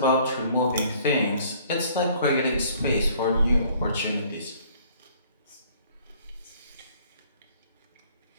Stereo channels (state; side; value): inverted; both; correlation -0.58